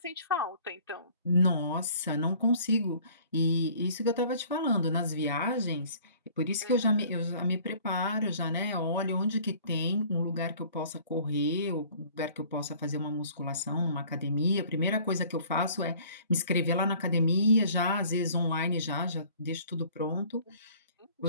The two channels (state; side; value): inverted; both; correlation -0.52